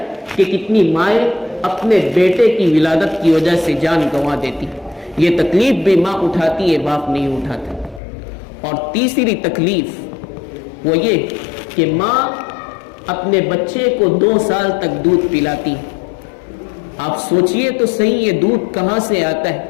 کہ کتنی مائیں اپنے بیٹے کی ولادت کی وجہ سے جان گنوا دیتی۔ یہ تکلیف بھی ماں اٹھاتی ہے، باپ نہیں اٹھاتا۔ اور تیسری تکلیف وہ یہ کہ ماں اپنے بچے کو 2 سال تک دودھ پلاتی ہے۔ آپ سوچئے تو صحیح، یہ دودھ کہاں سے آتا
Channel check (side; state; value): right; drops out; at 8.0 s